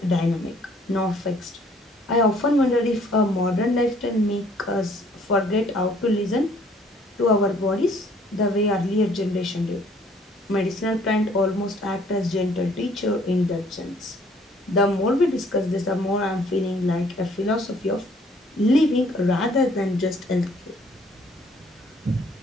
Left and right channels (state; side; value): normal; both; correlation 0.60